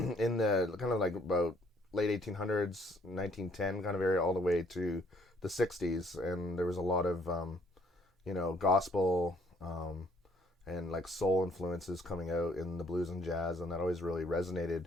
the kind of about late 1800s, 1910 kind of area, all the way to the 60s. And there was a lot of, gospel and soul influences coming out in the blues and jazz, and that always really resonated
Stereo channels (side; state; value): both; normal; correlation 0.64